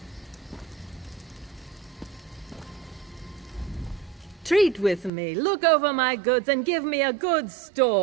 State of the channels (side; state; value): left; drops out; at 5.1 s